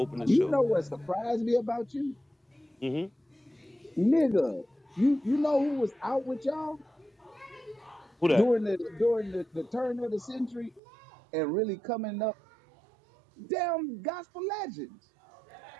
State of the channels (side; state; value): left; drops out; at 10.8 s